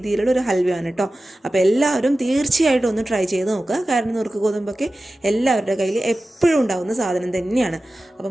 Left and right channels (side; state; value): both; normal; correlation 0.95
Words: ഒരു ഹൽവയാണ് കേട്ടോ. അപ്പോൾ എല്ലാവരും തീർച്ചയായിട്ടും ഒന്ന് ട്രൈ ചെയ്ത് നോക്കുക. കാരണം നുറുക്ക് ഗോതമ്പൊക്കെ എല്ലാവരുടെ കയ്യിൽ എപ്പോഴും ഉണ്ടാകുന്ന സാധനം തന്നെയാണ്. അപ്പോൾ